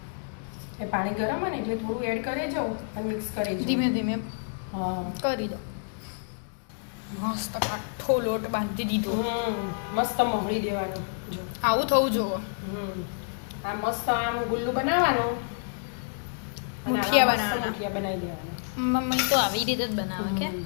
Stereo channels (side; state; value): right; silent; digital silence